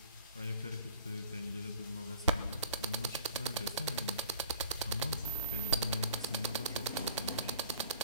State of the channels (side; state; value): both; inverted; correlation -0.51